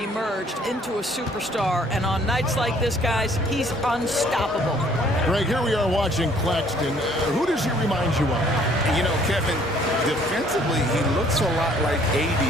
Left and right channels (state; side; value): normal; both; correlation 0.60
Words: into a superstar, and on nights like this, guys, he's unstoppable. Greg, here we are watching Claxton. Who does he remind you of? You know, Kevin, defensively, he looks a lot like AD